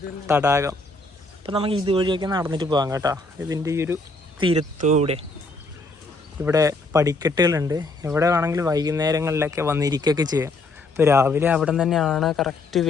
തടാകം. അപ്പം നമുക്ക് ഇതുവഴിയൊക്കെ നടന്നിട്ട് പോകാം കേട്ടോ. ഇതിൻ്റെ ഈ ഒരു തീരത്തൂടെ ഇവിടെ പടിക്കെട്ടുകളുണ്ട്. ഇവിടെ വേണമെങ്കിൽ വൈകുന്നേരങ്ങളിലൊക്കെ വന്നിരിക്കുകയൊക്കെ ചെയ്യാം. ഇപ്പോൾ രാവിലെ അവിടെ തന്നെയാണ് കറക്റ്റ്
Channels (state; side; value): quieter; right; 3.1 dB